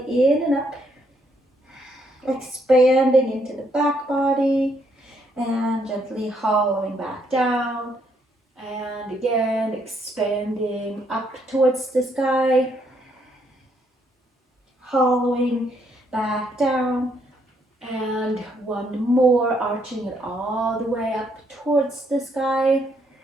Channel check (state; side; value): normal; both; correlation 0.72